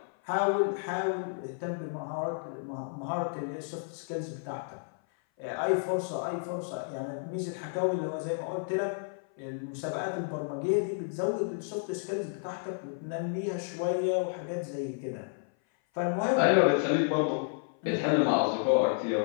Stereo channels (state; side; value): silent; right; 57 dB below the other